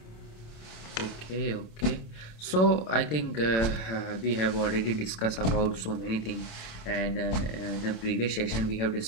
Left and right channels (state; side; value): late; right; 27 ms